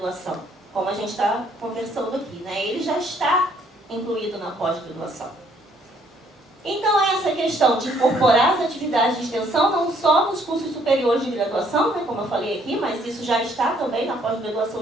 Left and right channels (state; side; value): normal; both; correlation 0.65